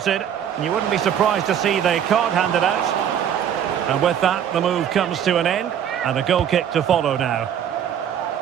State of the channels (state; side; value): quieter; left; 9.2 dB